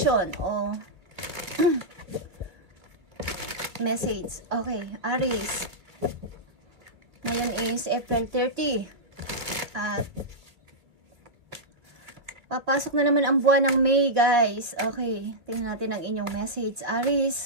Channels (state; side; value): late; left; 2.4 ms